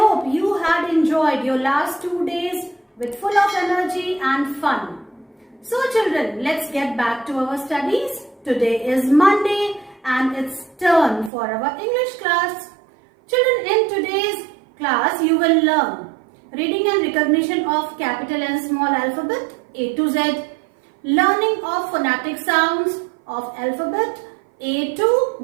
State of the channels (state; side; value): drops out; left; at 11.3 s